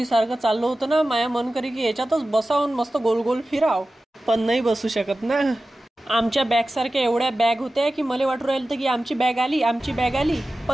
सारखं चाललं होतं ना. माया मन करी की याच्यातच बसावून मस्त गोल गोल फिराव, पण नाही बसू शकत ना. आमच्या बॅग सारख्या एवढ्या बॅग होत्या की मला वाटू राहिलं की आमची बॅग आली.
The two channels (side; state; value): both; normal; correlation 0.95